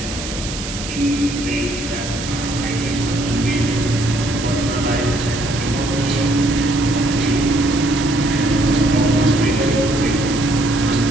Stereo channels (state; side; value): noise; right; hiss, 9 dB below the sound